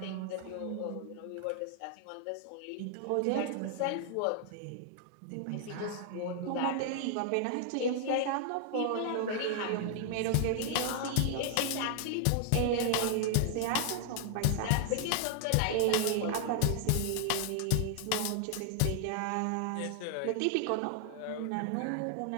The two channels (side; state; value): both; different; correlation 0.00